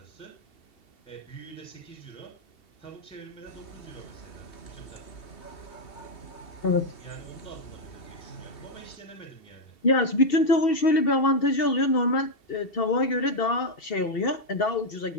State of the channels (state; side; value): late; right; 2.7 ms